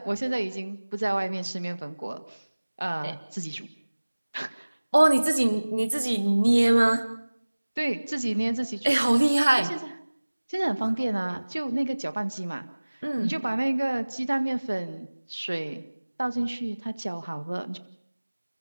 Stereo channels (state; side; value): inverted; both; correlation -1.00